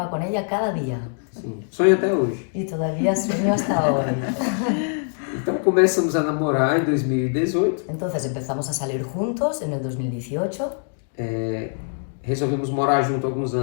con ella cada día. Sim, sonho até hoje. Y todavía sueño hasta hoy. Então começamos a namorar em 2018. Entonces empezamos a salir juntos en el 2018. Resolvemos morar junto alguns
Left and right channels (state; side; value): silent; right; 63 dB below the other